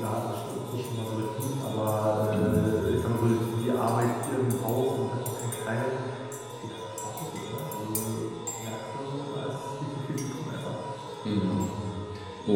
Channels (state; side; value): identical; both; correlation 1.00